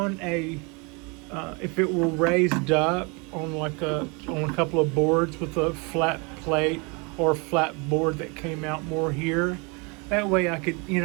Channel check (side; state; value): left; quieter; 30.5 dB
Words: if it were raised up on on a couple of boards with a flat plate or flat board that came out more here, that way I could,